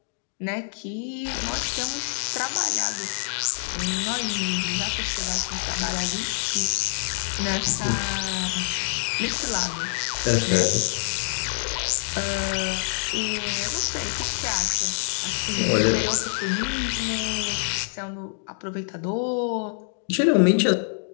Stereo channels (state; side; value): silent; right; digital silence